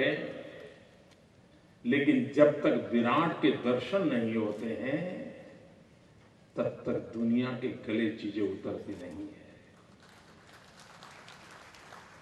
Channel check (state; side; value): identical; both; correlation 1.00